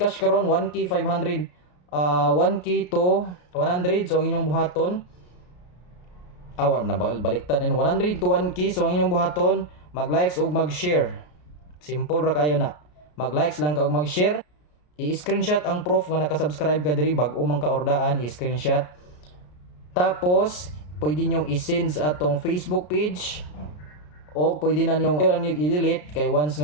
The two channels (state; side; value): late; right; 33 ms